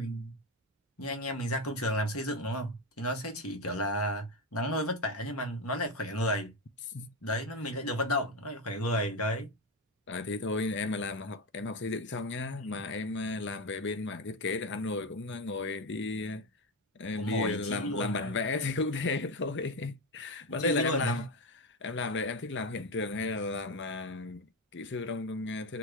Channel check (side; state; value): both; normal; correlation 0.14